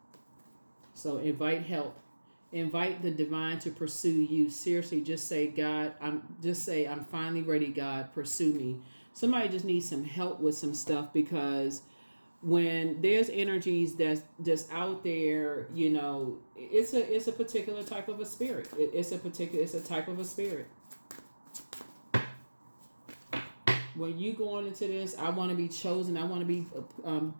So invite help. Invite the divine to pursue you. Seriously, just say, God, I'm finally ready, God, pursue me. Somebody just needs some help with some stuff, because when there's energies that's just out there, it's a particular type of a spirit. It's a type of a spirit. When you going into this, I want to be chosen. I want to be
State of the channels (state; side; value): inverted; both; correlation -1.00